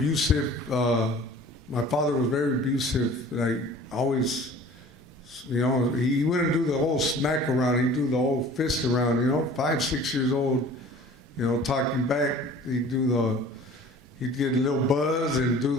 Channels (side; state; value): both; normal; correlation 0.46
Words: my father was very abusive. Like, always, you know, he wouldn't do the whole smack around, he'd do the whole fist around, you know, 5, 6 years old, you know, talking back. He'd get a little buzz and do